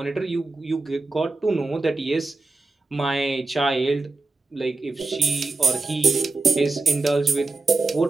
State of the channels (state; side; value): quieter; left; 3.5 dB